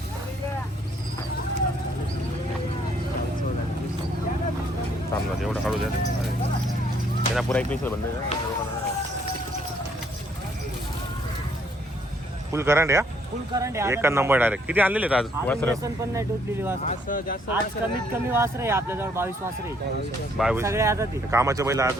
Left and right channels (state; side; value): normal; both; correlation 0.67